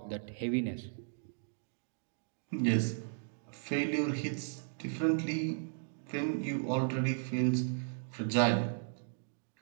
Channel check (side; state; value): left; silent; digital silence